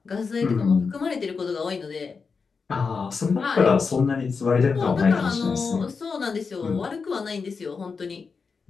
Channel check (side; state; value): right; quieter; 5.1 dB